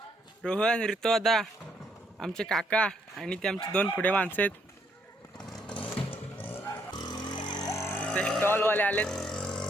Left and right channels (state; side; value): normal; both; correlation 0.72